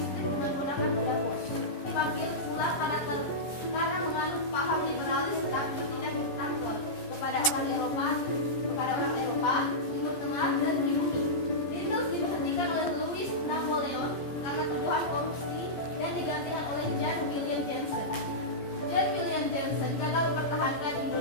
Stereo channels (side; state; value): right; late; 14 ms